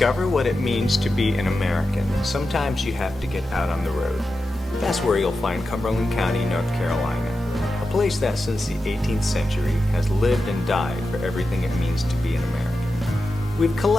what it means to be an American, sometimes you have to get out on the road. That's where you'll find Cumberland County, North Carolina, a place that since the 18th century has lived and died for everything it means to be an American. We've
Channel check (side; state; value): both; normal; correlation 0.91